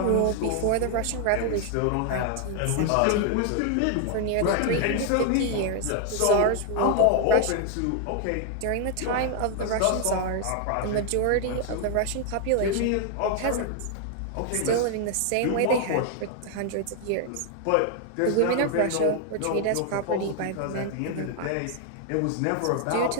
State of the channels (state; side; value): different; both; correlation 0.00